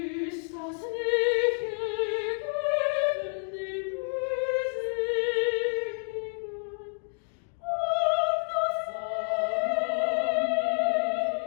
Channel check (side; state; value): right; silent; 59 dB below the other